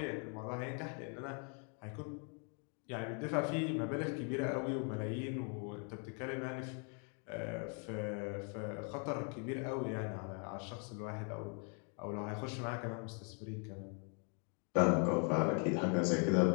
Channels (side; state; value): right; quieter; 39.6 dB